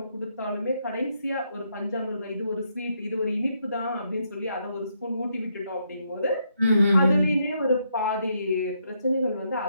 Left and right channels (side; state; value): both; inverted; correlation -0.76